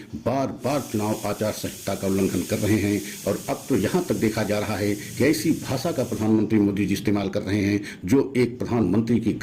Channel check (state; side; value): identical; both; correlation 1.00